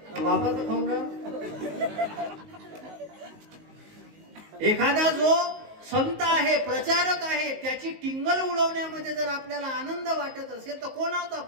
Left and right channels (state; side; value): late; left; 19 ms